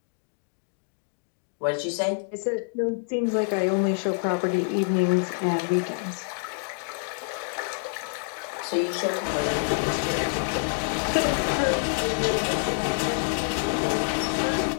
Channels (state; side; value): silent; right; digital silence